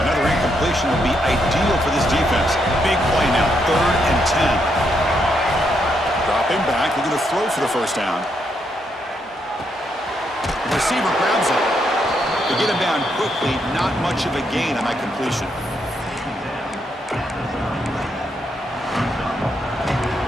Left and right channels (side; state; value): both; normal; correlation 0.78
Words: Another incompletion would be ideal for this defense. Big play now, 3rd and 10. Dropping back, looking to throw for the 1st down. The receiver grabs it. They get him down quickly, not much of a gain on that completion.